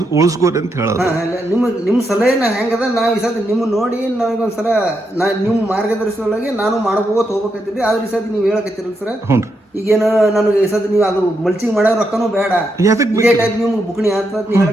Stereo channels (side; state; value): both; normal; correlation 0.82